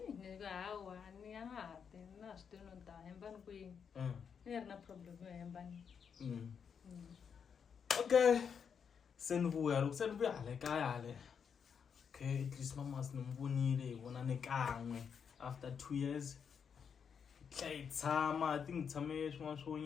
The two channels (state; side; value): quieter; right; 6.9 dB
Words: nika hawa ni angahati na switino ta hembani kwini ni ri na problem yo hembani okay se nibuya le kaya le okay at least mama sinimvunile ibona nekanwe after 2 years tshama tingitshame swin'wana swo